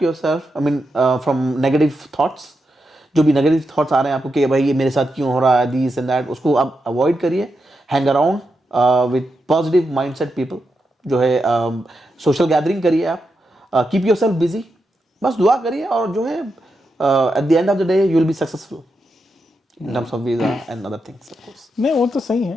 yourself I mean from negative thoughts. जो भी नेगेटिव थॉट्स आ रहे हैं आपको कि भाई ये मेरे साथ क्यों हो रहा है, दिस एंड दैट, उसको आप अवॉइड करिए। Hang around with positive mindset people, जो है सोशल गैदरिंग करिए आप, कीप योरसेल्फ बिजी, बस दुआ करिए, और जो है at the end of the day you will be successful in terms of visa and other things of course. नहीं, वो तो सही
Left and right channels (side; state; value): both; normal; correlation 0.86